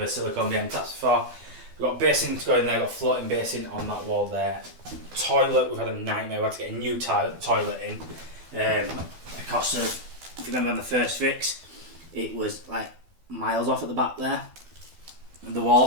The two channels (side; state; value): left; late; 12 ms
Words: silicone behind taps before. We've got basin to go in there, got a floating basin on that wall there. Toilet, we've had a nightmare. We had to get a new toilet in because of, if you remember on the first fix, it was like miles off at the back there, the